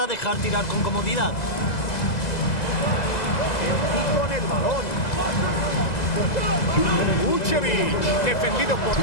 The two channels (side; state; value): right; late; 2.0 ms